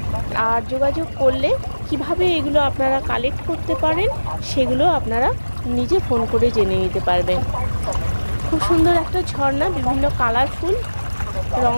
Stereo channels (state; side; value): inverted; both; correlation -1.00